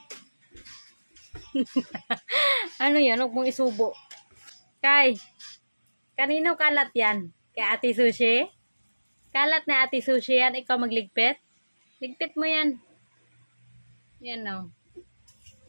Ano yan? Huwag mong isubo. Kai, kanino kalat yan? Kay Ate Sushi? Kalat na Ate Sushi yan. Ikaw magligpit? Ligpit mo yan. Yan, oh.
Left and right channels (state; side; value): inverted; both; correlation -1.00